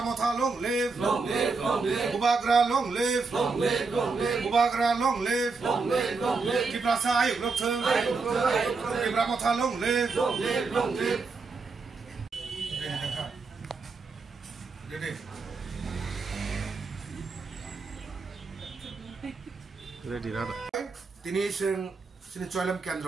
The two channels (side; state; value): left; quieter; 4.3 dB